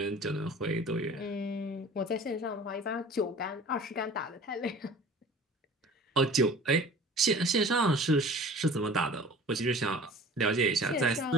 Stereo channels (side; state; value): both; normal; correlation 0.44